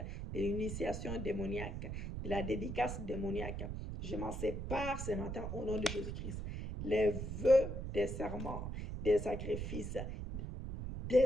de la dédicace démoniaque. Je m'en sépare ce matin au nom de Jésus-Christ. Les vœux des serments, des sacrifices,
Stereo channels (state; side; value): noise; right; rumble, 5 dB below the sound